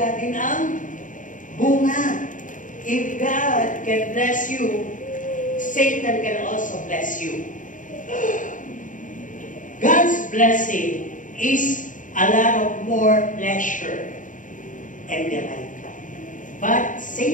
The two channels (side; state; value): right; late; 0.38 ms